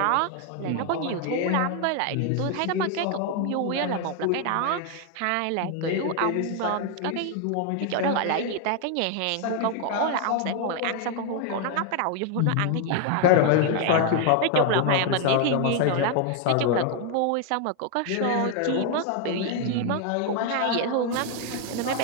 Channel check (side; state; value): both; different; correlation 0.01